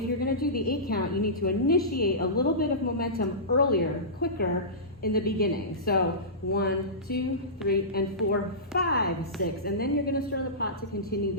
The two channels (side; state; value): both; normal; correlation -0.20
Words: you're going to do the 8-count, you need to initiate a little bit of momentum earlier, quicker in the beginning. So 1, 2, 3, and 4, 5, 6, and then you're going to stir the pot to continue